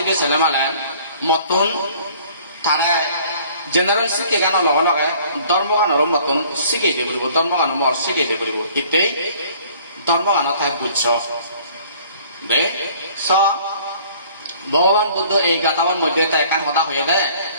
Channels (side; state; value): both; inverted; correlation -0.54